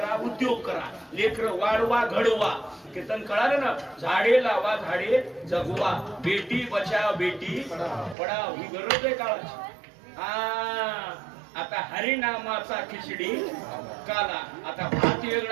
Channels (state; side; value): drops out; left; at 8.2 s